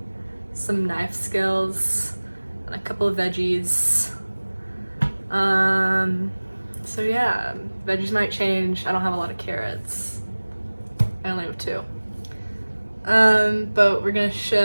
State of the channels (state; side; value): inverted; both; correlation -1.00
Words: some knife skills and a couple of veggies. So yeah, veggies might change. I don't have a lot of carrots. I only have 2. But we're gonna